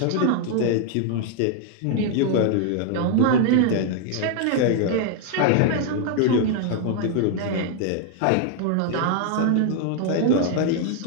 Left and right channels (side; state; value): both; different; correlation 0.00